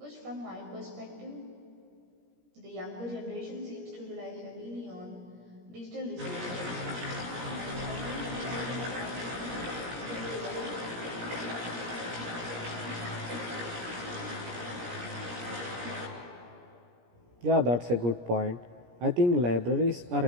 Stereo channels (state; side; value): late; left; 17 ms